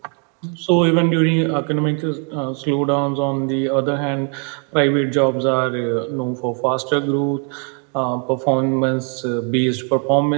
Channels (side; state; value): left; quieter; 39.3 dB